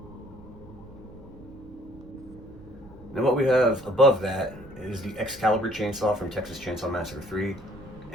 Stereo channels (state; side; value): noise; right; rumble, 21 dB below the sound